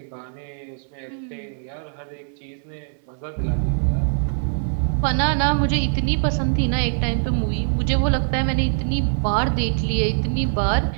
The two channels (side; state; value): left; silent; digital silence